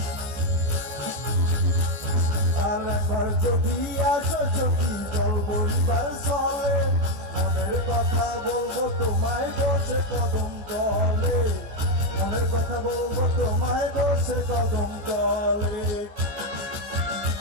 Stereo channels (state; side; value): late; left; 14 ms